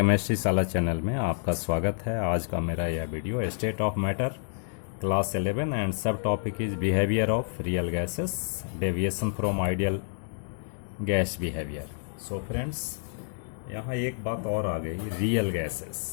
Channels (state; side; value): silent; right; digital silence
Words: साला चैनल में आपका स्वागत है। आज का मेरा यह video state of matter class 11 and subtopic is behaviour of real gases, deviation from ideal gas behaviour. So friends, यहाँ एक बात और आ गई, रियल